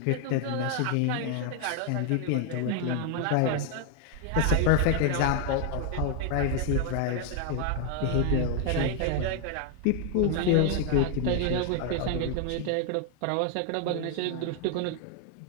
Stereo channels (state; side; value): different; both; correlation 0.00